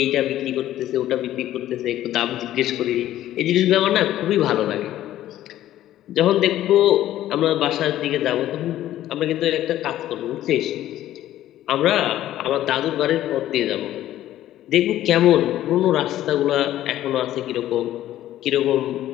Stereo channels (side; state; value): right; quieter; 13.3 dB